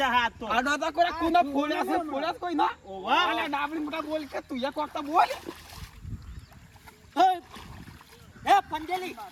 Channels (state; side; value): identical; both; correlation 1.00